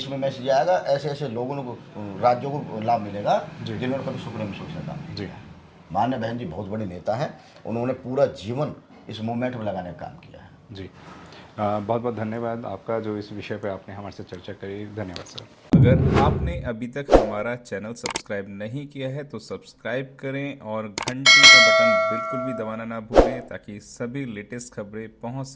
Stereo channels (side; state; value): both; identical; correlation 1.00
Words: में मैसेज आएगा, ऐसे ऐसे लोगों को, राज्यों को लाभ मिलेगा जिन्होंने कभी सुप्रीम कोर्ट से काम जी। किया है। माननीय बहन जी बहुत बड़ी नेता है, उन्होंने पूरा जीवन इस मूवमेंट में लगाने का काम किया है। जी। बहुत बहुत धन्यवाद आपका, जो इस विषय पे आपने हमारे से चर्चा करी। धन्यवाद सर। अगर आपने अभी तक हमारा चैनल सब्सक्राइब नहीं किया है तो सब्सक्राइब करें और घंटी का बटन बिल्कुल भी दबाना ना भूलें, ताकि सभी लेटेस्ट खबरें पहुंच